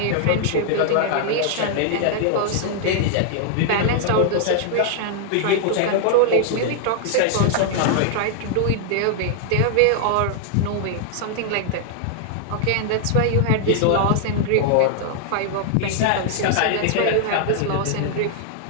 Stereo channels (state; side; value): different; both; correlation 0.00